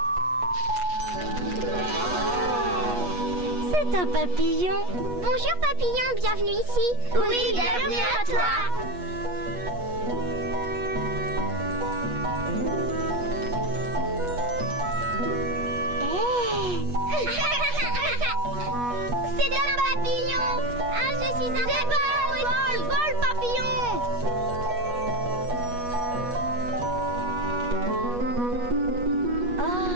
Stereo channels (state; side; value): late; left; 8.3 ms